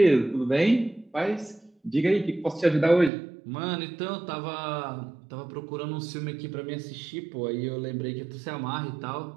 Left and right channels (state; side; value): drops out; left; at 3.1 s